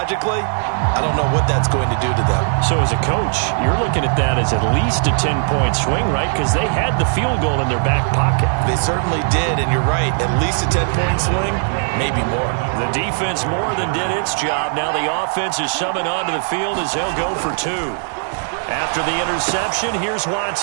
I don't know what that's going to do to them. So as a coach, you're looking at that as at least a 10-point swing, right? Because they had the field goal in their back pocket. They certainly did, and you're right. At least a 10-point swing, maybe more. The defense more than did its job. Now the offense is summoned onto the field as they'll go for 2. After the interception, here's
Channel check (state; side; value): silent; left; digital silence